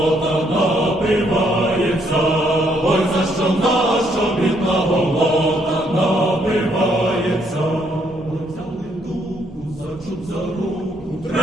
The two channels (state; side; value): normal; both; correlation 0.71